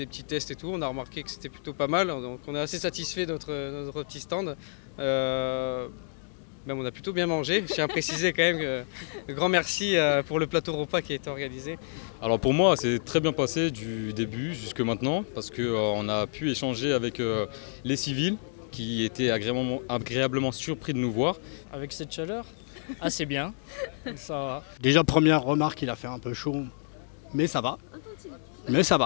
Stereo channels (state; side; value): silent; right; digital silence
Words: petits tests et tout. On a remarqué que c'était plutôt pas mal. Donc on est assez satisfait de notre petit stand. Même on a plutôt bien mangé. Je tiens à préciser quand même que un grand merci pour le plateau repas qui a été organisé. Alors pour moi, c'est très bien passé du début jusque maintenant parce qu'on a pu échanger avec les civils qui étaient agréablement surpris de nous voir. Avec cette chaleur, assez bien. Ça va. Déjà, première remarque, il a fait un peu chaud, mais ça va. Mais ça